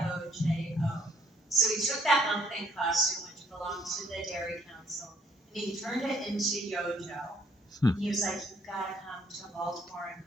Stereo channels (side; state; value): both; normal; correlation 0.64